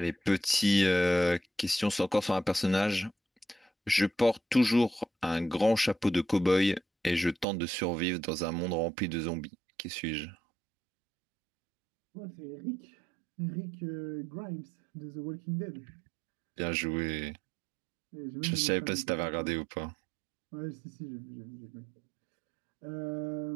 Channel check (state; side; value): drops out; left; at 7.5 s